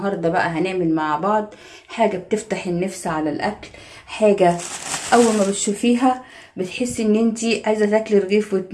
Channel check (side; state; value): both; identical; correlation 1.00